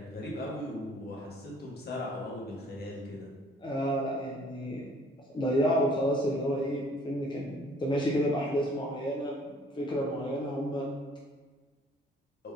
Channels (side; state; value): both; normal; correlation 0.57